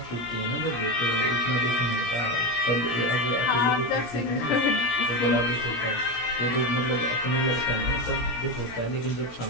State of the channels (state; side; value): late; right; 17 ms